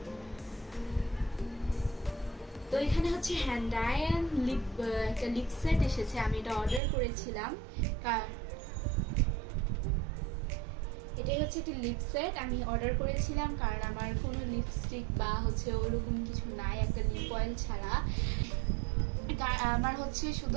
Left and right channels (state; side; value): drops out; left; at 6.8 s